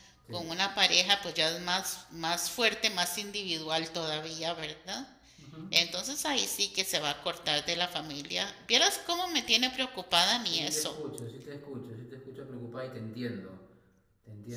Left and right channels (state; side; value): identical; both; correlation 1.00